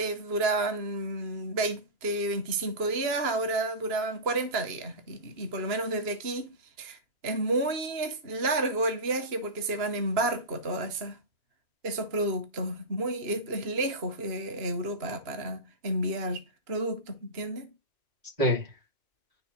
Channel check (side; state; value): left; late; 2.9 ms